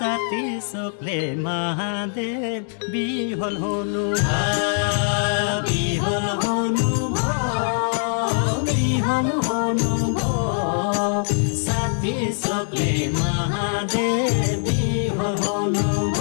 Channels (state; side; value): silent; right; digital silence